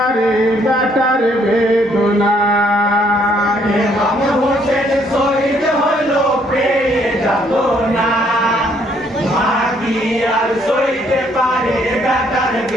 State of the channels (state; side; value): normal; both; correlation 0.67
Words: বেটার বেদনা ইমাম হোসেন শহীদ হলো পেয়ে যাতনা মা কি আর সইতে পারে বেটার